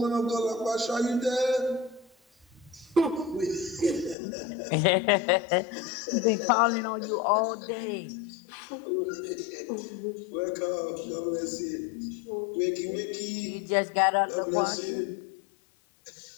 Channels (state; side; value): drops out; right; at 4.2 s